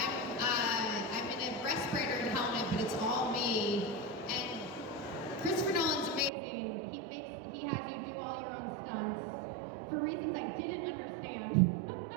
in a respirator and helmet, but it's all me. And Christopher Nolan's amazing. He has you do all your own stunts for reasons I didn't understand.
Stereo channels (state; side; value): drops out; left; at 6.3 s